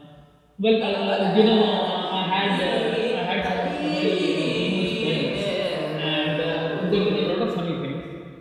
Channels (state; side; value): identical; both; correlation 1.00